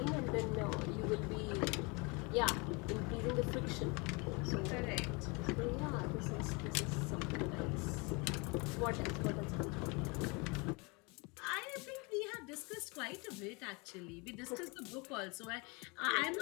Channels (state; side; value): quieter; right; 29.1 dB